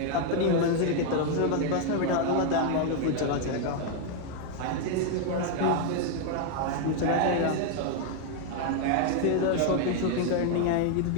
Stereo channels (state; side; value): different; both; correlation 0.00